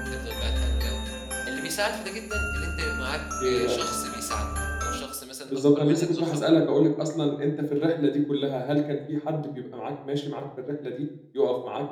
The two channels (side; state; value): both; identical; correlation 1.00